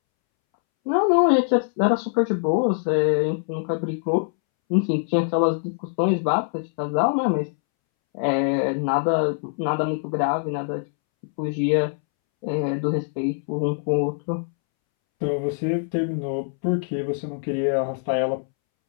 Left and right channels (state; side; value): silent; right; 63 dB below the other